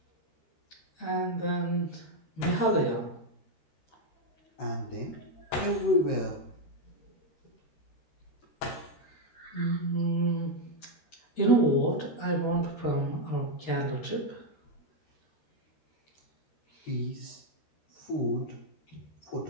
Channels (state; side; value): late; right; 13 ms